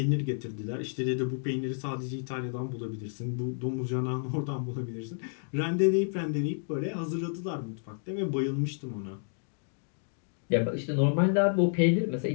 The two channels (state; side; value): silent; right; digital silence